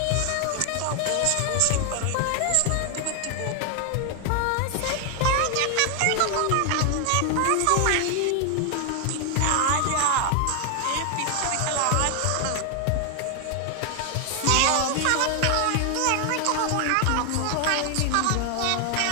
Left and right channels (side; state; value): both; different; correlation 0.00